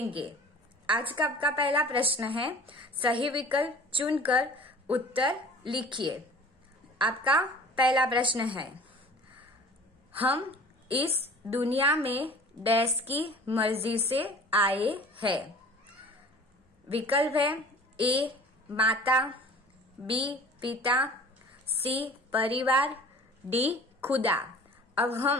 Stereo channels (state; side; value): normal; both; correlation 0.45